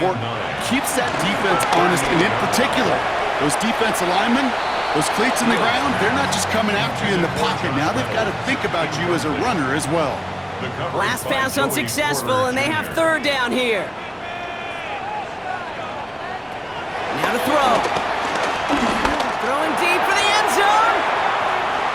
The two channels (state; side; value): identical; both; correlation 1.00